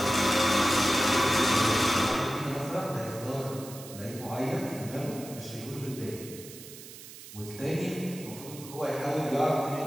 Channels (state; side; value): noise; right; hiss, 15 dB below the sound